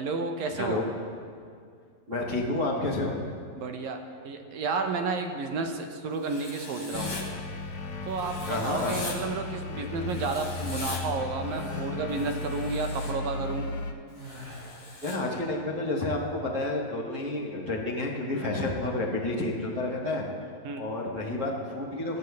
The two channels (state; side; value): late; left; 11 ms